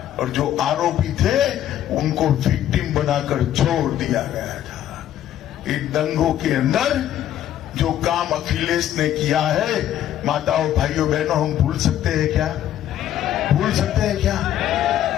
और जो आरोपी थे उनको विक्टिम बनाकर छोड़ दिया गया था। इन दंगों के अंदर जो काम अखिलेश ने किया है, माताओं, भाइयों, बहनों, हम भूल सकते हैं क्या? भूल सकते हैं क्या?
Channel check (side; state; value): right; quieter; 11.6 dB